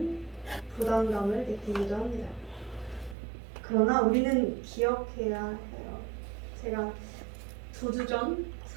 부담감을 느끼기도 합니다. 그러나 우리는 기억해야 해요. 제가 2주 전,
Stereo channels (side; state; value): left; drops out; at 3.2 s